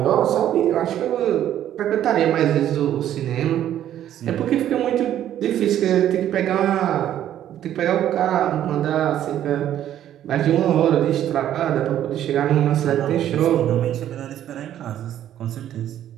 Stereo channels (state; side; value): quieter; left; 11.4 dB